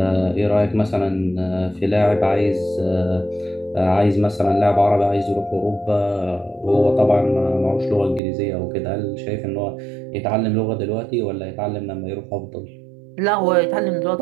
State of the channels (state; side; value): drops out; left; at 8.2 s